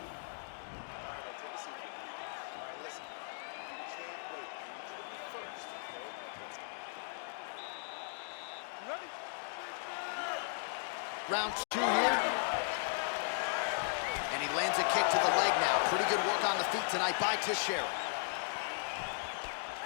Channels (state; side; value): silent; right; digital silence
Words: Round 2 here. And he lands a kick to the leg now. Pretty good work on the feet tonight by Teixeira.